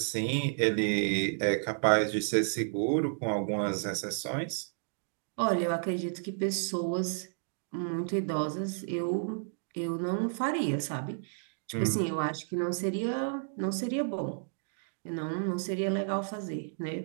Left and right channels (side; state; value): left; silent; digital silence